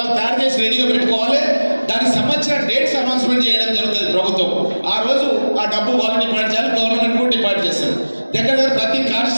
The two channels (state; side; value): inverted; both; correlation -1.00